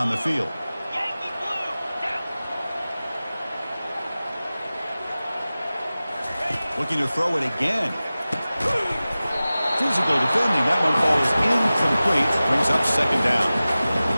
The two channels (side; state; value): both; inverted; correlation -0.97